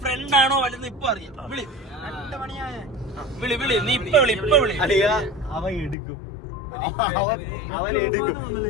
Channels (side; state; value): right; drops out; at 6.0 s